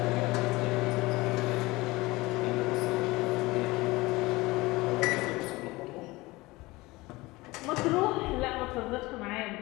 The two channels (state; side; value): quieter; right; 21.2 dB